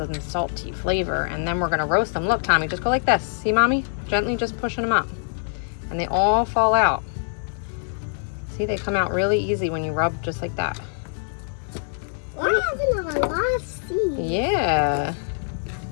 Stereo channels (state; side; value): silent; right; digital silence